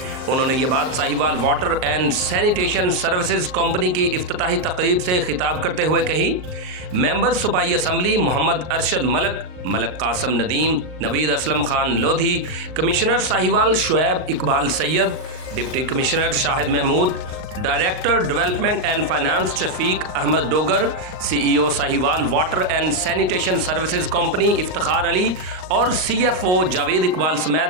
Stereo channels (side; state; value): left; late; 38 ms